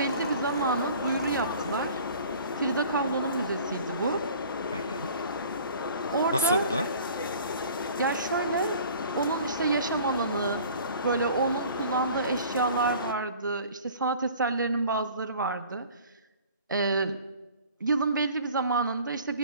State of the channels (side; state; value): both; inverted; correlation -0.47